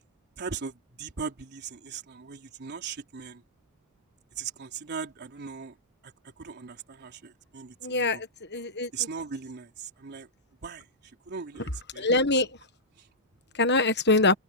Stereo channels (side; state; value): both; normal; correlation -0.14